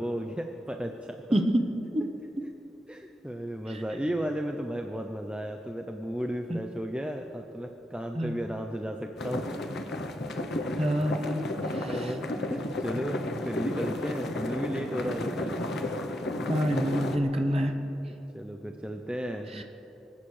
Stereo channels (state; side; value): normal; both; correlation 0.84